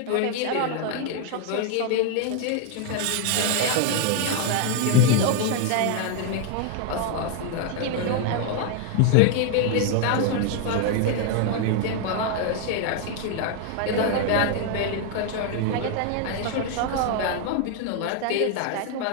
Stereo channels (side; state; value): both; different; correlation 0.00